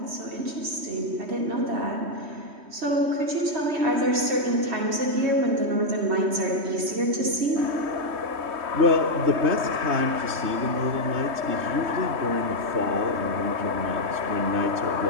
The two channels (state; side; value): late; left; 3.2 ms